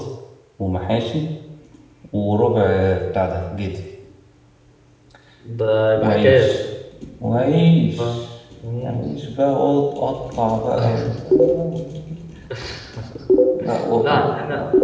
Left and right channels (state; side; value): identical; both; correlation 1.00